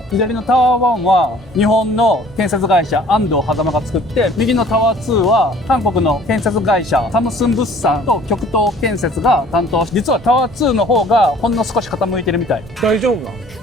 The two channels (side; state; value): both; normal; correlation 0.53